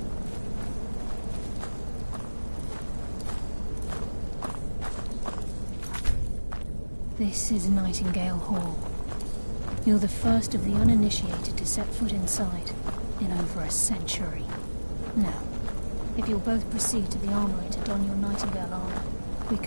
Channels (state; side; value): inverted; both; correlation -1.00